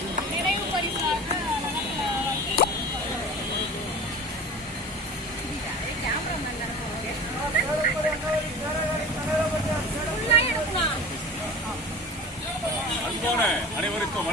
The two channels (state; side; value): normal; both; correlation 0.36